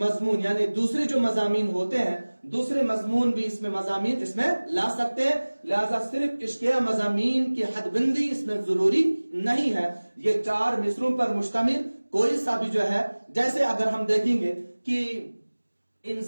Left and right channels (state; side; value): inverted; both; correlation -1.00